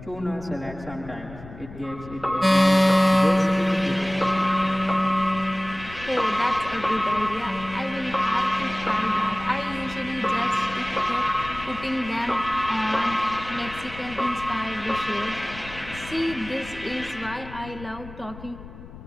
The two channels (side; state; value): left; noise; rumble, 16 dB below the sound